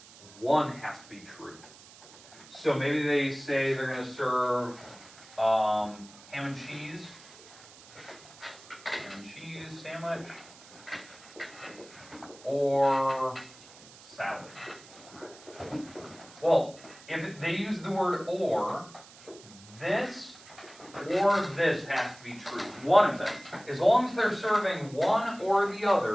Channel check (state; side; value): noise; right; hiss, 21 dB below the sound